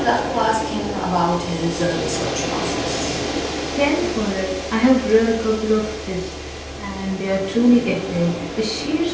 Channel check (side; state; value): both; identical; correlation 1.00